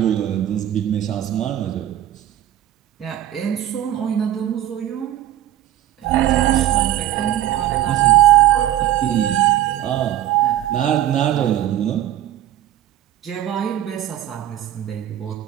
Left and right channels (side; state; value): left; quieter; 12.6 dB